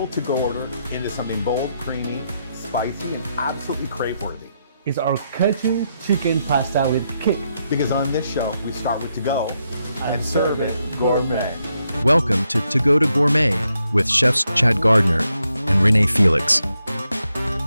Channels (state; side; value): inverted; both; correlation -0.81